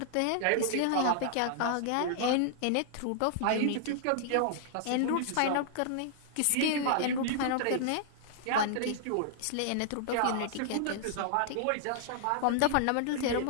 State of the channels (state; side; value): different; both; correlation -0.01